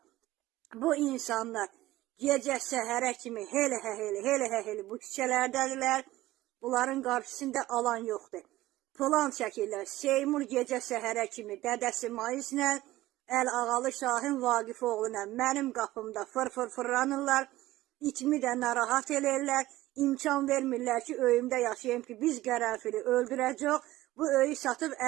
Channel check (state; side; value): quieter; left; 16.7 dB